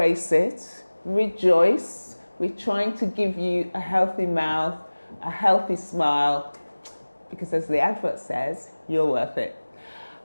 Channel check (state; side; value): inverted; both; correlation -1.00